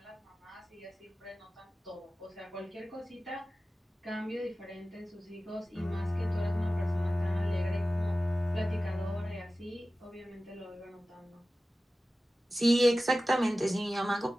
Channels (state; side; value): normal; both; correlation 0.95